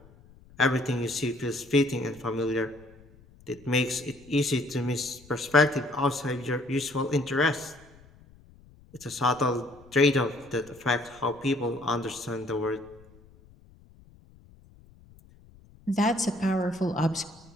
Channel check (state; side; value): noise; left; rumble, 25 dB below the sound